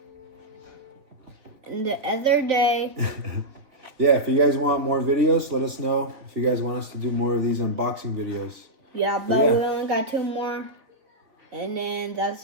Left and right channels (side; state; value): left; late; 3.4 ms